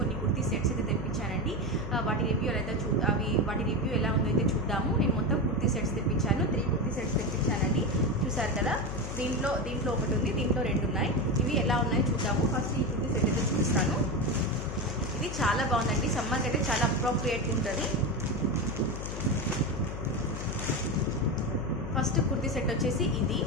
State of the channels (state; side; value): noise; left; hum, 6 dB below the sound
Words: కుర్తీ సెట్స్ అయితే తెప్పించానండి. వాటి రివ్యూ ఎలా ఉందో అయితే చూద్దాము. నేను మొత్తం కుర్తీ సెట్స్ తెప్పించాను. 3 కుర్తీ సెట్స్ తెప్పించానండి. చూసారు కదా, దీంట్లో ఒకటి ఉంది, దీంట్లో 2 ఉన్నాయి. ఇవి ఎలా ఉన్నాయో చూద్దాము. ఫస్ట్ ఈ కుర్తీ సెట్ అయితే చూపిస్తాను. ఇది చాలా బాగుందండి, సమ్మర్కి అయితే చాలా అప్రోప్రియేట్గా ఉంటుంది. ఫస్ట్ కుర్తీ సెట్ వచ్చేసి ఇది